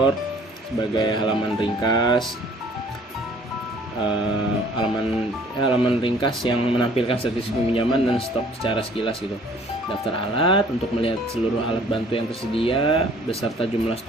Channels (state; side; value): normal; both; correlation 0.55